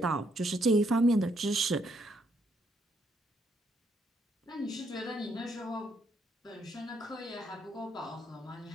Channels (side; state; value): both; normal; correlation 0.73